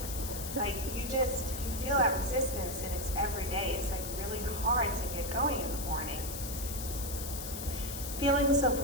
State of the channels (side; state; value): left; noise; hiss, 7 dB below the sound